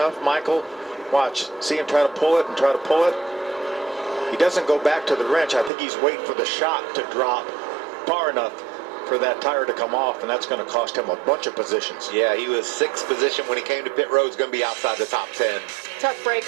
Michael. Watch. See him try to pull it and try to pull it. He doesn't go back to the wrench. I think he's waiting for the shot to drop far enough for that tire to come off, and that's going to cost him a bunch of positions. Yeah, he was 6th position when he came to pit road. He's going to be outside the top 10. Tough break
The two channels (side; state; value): left; drops out; at 5.7 s